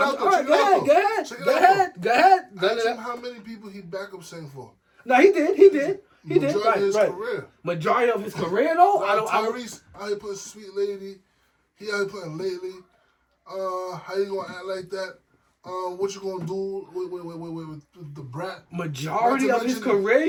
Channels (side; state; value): both; identical; correlation 1.00